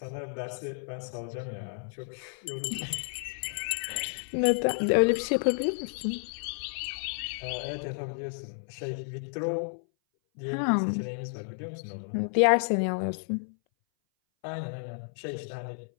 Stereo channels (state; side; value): silent; right; 57 dB below the other